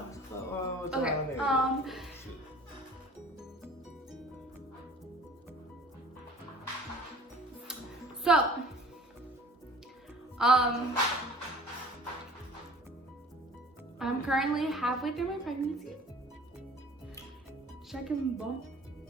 Okay. So, I'm currently halfway through my pregnancy. Should I can bump?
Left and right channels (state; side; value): normal; both; correlation 0.48